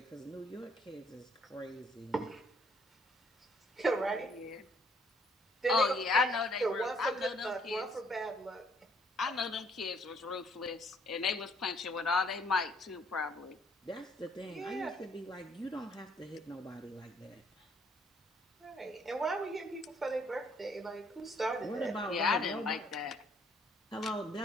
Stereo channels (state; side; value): normal; both; correlation 0.65